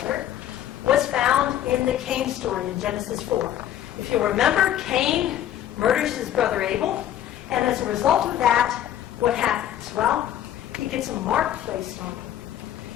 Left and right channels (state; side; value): quieter; right; 11.5 dB